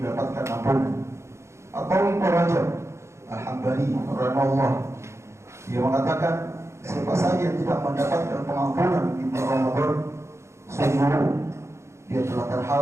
ampunan. Atau Ibnu Rajab Al-Hambali rahimahullah, dia mengatakan, siapa saja yang tidak mendapatkan pengampunan di bulan Ramadan, sungguh dia telah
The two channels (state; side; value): late; left; 0.13 ms